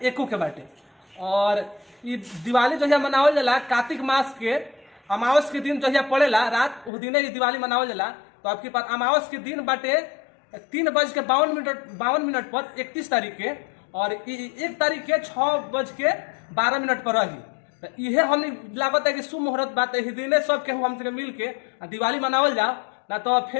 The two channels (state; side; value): drops out; right; at 6.9 s